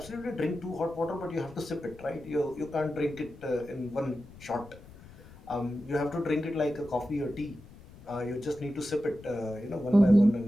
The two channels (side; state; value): left; noise; rumble, 20 dB below the sound